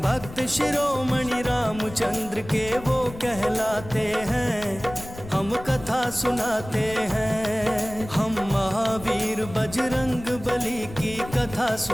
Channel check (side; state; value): left; noise; rumble, 15 dB below the sound